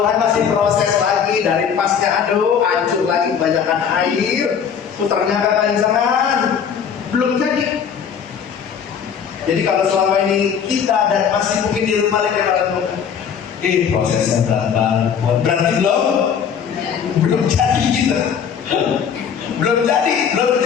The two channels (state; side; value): quieter; right; 7.5 dB